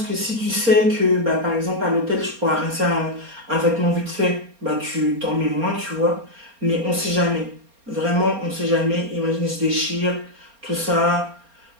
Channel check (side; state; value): left; late; 4.3 ms